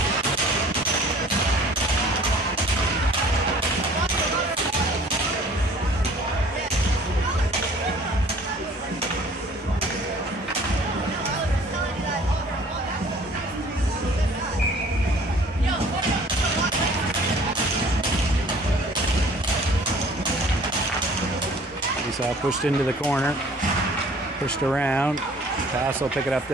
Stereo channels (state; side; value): normal; both; correlation 0.52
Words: Pushed into the corner, pushed around. Pass will pick it up